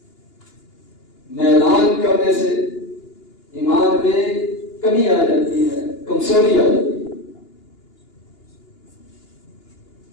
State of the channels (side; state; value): right; late; 2.8 ms